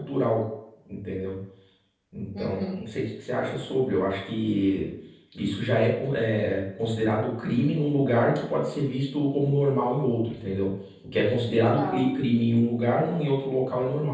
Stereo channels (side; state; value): both; identical; correlation 1.00